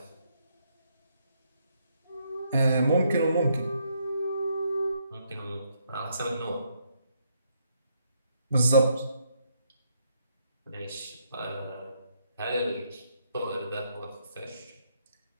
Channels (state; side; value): inverted; both; correlation -0.74